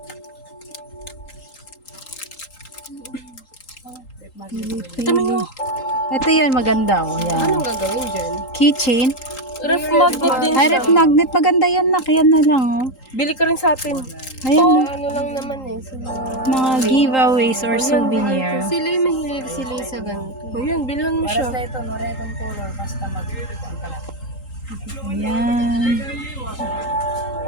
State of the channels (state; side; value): late; right; 3.8 ms